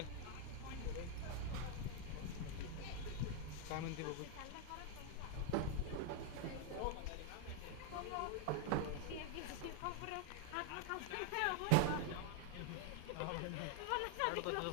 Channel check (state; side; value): different; both; correlation 0.00